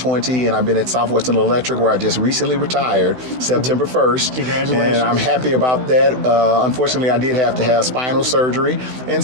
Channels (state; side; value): late; left; 16 ms